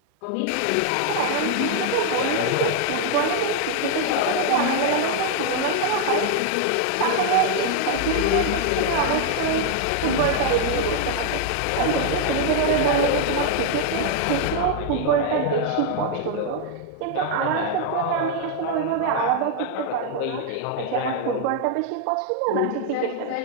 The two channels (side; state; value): both; different; correlation 0.00